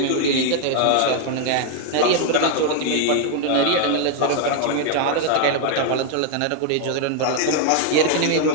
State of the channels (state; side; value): different; both; correlation 0.00